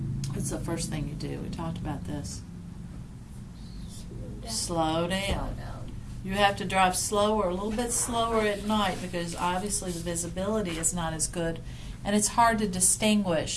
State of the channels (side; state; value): both; identical; correlation 1.00